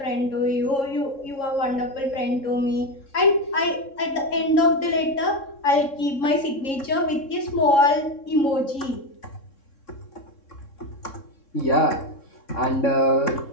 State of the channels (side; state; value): right; late; 3.7 ms